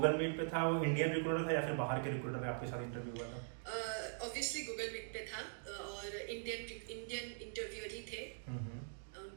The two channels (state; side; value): silent; left; digital silence